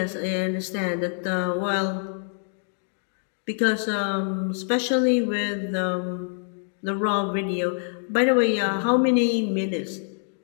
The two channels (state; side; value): silent; right; digital silence